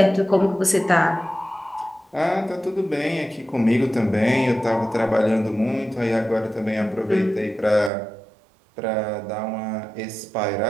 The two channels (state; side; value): drops out; left; at 7.9 s